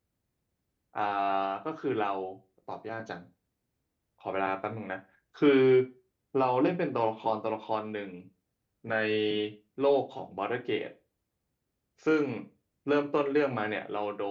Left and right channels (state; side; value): identical; both; correlation 1.00